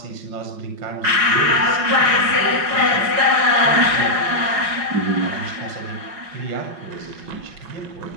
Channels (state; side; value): late; left; 5.5 ms